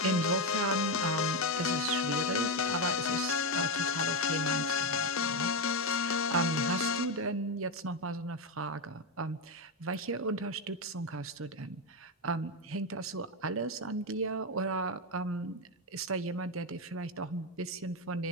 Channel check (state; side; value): normal; both; correlation 0.08